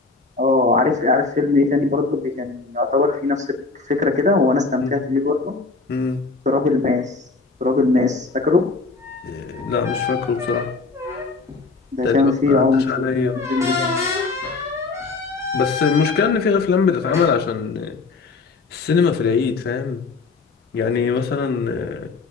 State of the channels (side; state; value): right; quieter; 3.9 dB